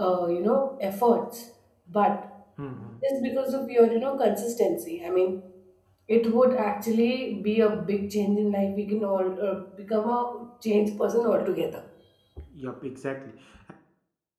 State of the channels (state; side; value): identical; both; correlation 1.00